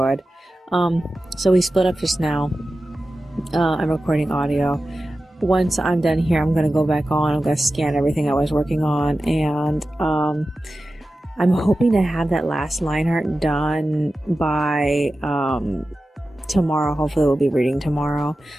So we split up just now. I'm recording audio. Once I'm done here, I'm gonna go back on. I'm gonna scan everything I was working on, and I'm hoping to have that last line art done by tomorrow. Hopefully we'll be reading tomorrow,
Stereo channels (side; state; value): both; normal; correlation 0.94